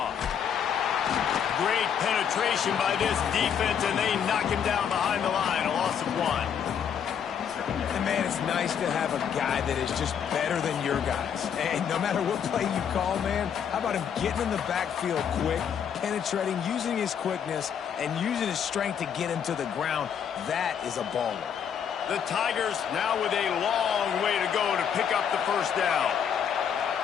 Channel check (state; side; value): quieter; right; 8.0 dB